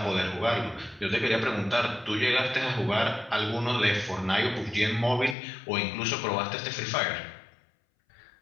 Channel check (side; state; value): right; drops out; at 5.4 s